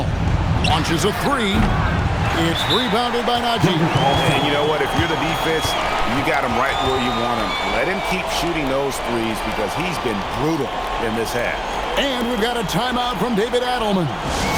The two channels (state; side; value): identical; both; correlation 1.00